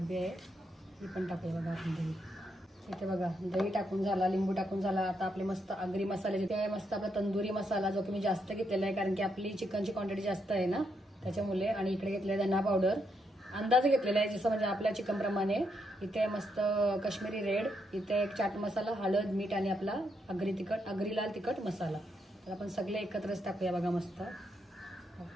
आहे ही पण टाकूया बघा आपण दही. इथे बघा दही टाकून झाला लिंबू टाकून झाला. आता आपले मस्त आगरी मसाले तिथे आहे मस्त आपला तंदुरी मसाला जो की मी जास्त घेतलेला आहे कारण की आपली चिकनची क्वांटिटी जास्त आहे ना त्याच्यामुळे. आणि इकडे घेतलेला धना पावडर अंदाज घेतलेला आहे जसं म्हणजे आपल्या चिकन प्रमाणे. इथे मस्त काश्मीरी रेड. इथे एक चाट मसाला हळद मीठ आणि आपला आगरी लाल तिखट मसाला. तर आपण सगळे एकत्रच टाकूया बघा मस्त.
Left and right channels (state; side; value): normal; both; correlation 0.79